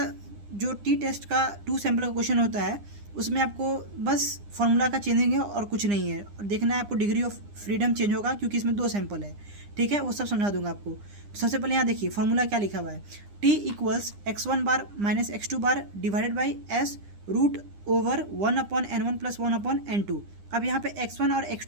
जो टी टेस्ट का टू सैंपल का क्वेश्चन होता है, उसमें आपको बस फॉर्मूला का चेंजिंग है और कुछ नहीं है। और देखना है आपको डिग्री ऑफ फ्रीडम चेंज होगा, क्योंकि इसमें दो सैंपल है। ठीक है, वो सब समझा दूंगा आपको। तो सबसे पहले यहाँ देखिए फॉर्मूला क्या लिखा हुआ है। T equals x1 bar minus x2 bar divided by S root over 1/n1 plus 1/n2। अब यहाँ पे x1 और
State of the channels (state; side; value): late; left; 9.9 ms